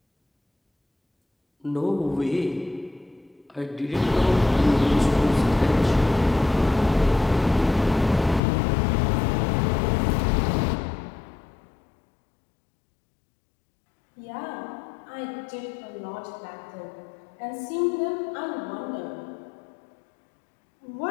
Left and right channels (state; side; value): drops out; right; at 8.4 s